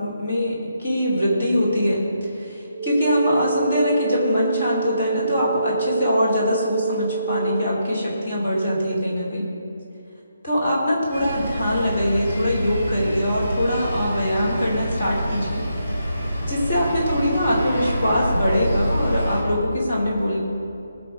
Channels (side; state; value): both; inverted; correlation -0.80